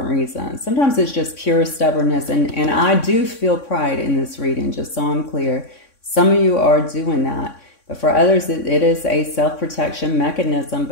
reasons. Sometimes it's just pure stubbornness, and I do feel pride in this reading, just so I'm clear. Some of you are doing that, but for others it is a self-protection mechanism,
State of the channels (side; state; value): right; late; 3.6 ms